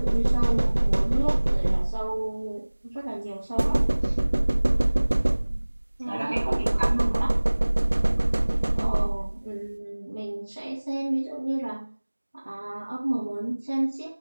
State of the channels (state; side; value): inverted; both; correlation -1.00